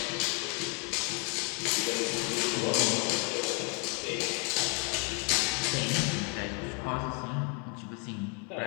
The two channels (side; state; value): right; quieter; 33.2 dB